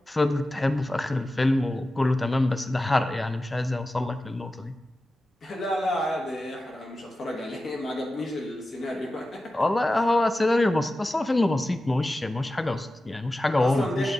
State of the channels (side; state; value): both; normal; correlation 0.94